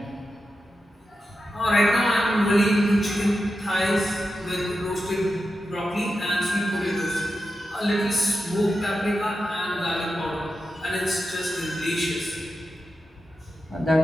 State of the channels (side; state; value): both; normal; correlation 0.90